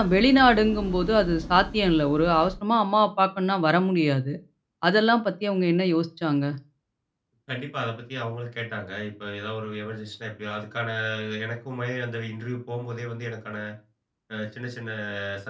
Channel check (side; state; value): both; identical; correlation 1.00